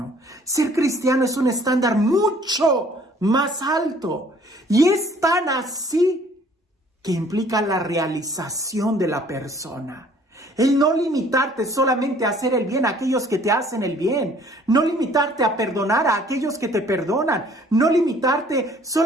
Ser cristiano es un estándar mucho más alto. Y es tan así que implica la realización de la persona. El no limitarte solamente a hacer el bien a aquellos que te hacen el bien. No limitarte a perdonar a aquellos que te perdonan. No limitarte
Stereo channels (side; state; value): both; normal; correlation 0.56